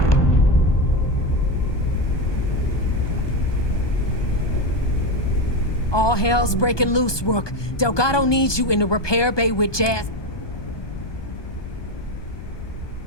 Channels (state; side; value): late; right; 1.2 ms